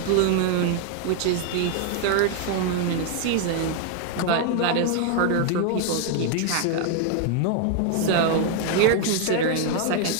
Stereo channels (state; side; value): different; both; correlation 0.01